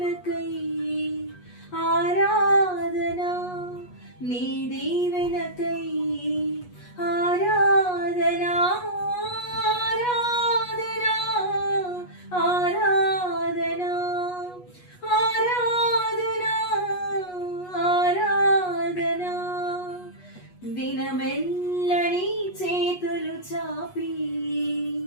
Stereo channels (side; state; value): right; late; 8.3 ms